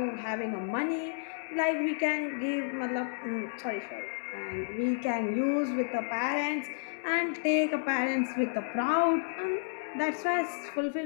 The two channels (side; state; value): right; silent; digital silence